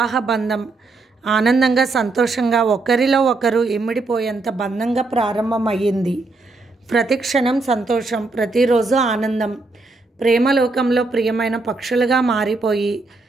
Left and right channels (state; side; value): quieter; left; 3.5 dB